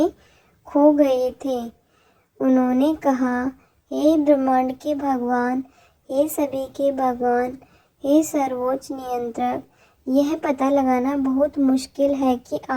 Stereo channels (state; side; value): identical; both; correlation 1.00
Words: खो गए थे। उन्होंने कहा, हे ब्रह्मांड के भगवान, हे सभी के भगवान, हे सर्वोच्च नियंत्रक, यह पता लगाना बहुत मुश्किल है कि